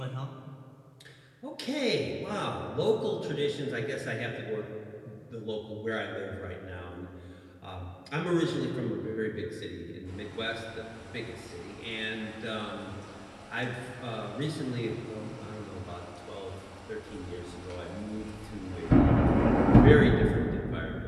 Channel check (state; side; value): identical; both; correlation 1.00